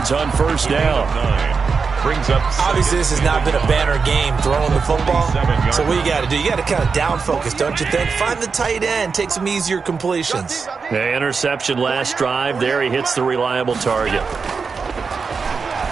on first down. Obviously, this has not been a banner game throwing the football. So what you got to do, you got to kind of down focus, don't you think? Find the tight end, take some easier completions. The interception last drive. There he hits the reliable target.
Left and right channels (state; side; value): quieter; left; 5.1 dB